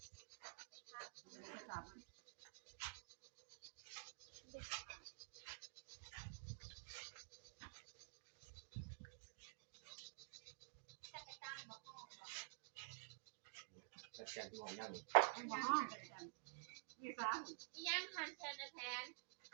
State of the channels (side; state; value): left; silent; digital silence